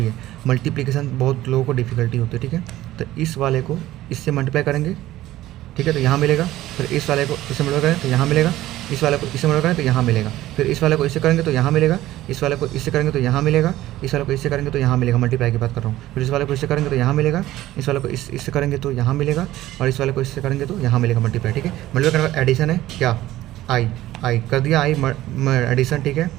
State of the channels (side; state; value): left; quieter; 15.3 dB